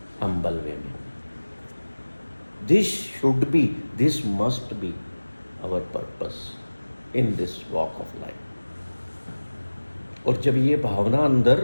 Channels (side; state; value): both; inverted; correlation -1.00